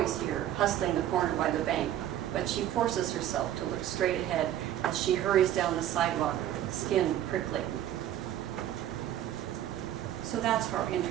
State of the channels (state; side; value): quieter; left; 11.8 dB